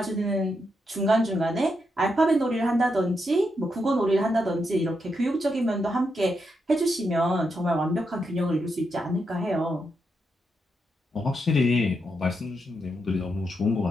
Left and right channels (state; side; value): normal; both; correlation 0.83